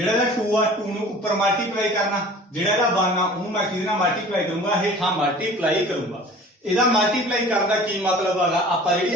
इहदा 2 आ 2 नूं उपर मल्टीप्लाई करना जिहड़ा इहदा 1 आ ओहनूं मैं किहदे नाल मल्टीप्लाई करूंगा हेठां मल्टीप्लाई करूंगा। ਇਹਦਾ ਮਲਟੀਪਲਾਈ ਕਰਨ ਦਾ ਕੀ ਮਤਲਬ ਹੈਗਾ ਆਪਾਂ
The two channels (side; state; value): both; normal; correlation 0.44